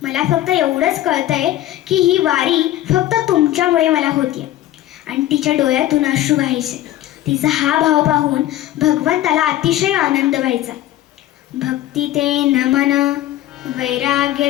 मला फक्त एवढंच कळतंय की ही वारी फक्त तुमच्यामुळे मला होतीये. आणि तिच्या डोळ्यातून अश्रू व्हायचे. तिचा हा भाव पाहून भगवंताला अतिशय आनंद व्हायचा. भक्ती ते नमन, वैराग्य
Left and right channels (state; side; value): quieter; right; 14.0 dB